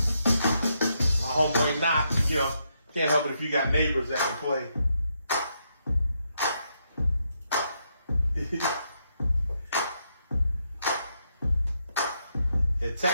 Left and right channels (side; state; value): both; inverted; correlation -0.79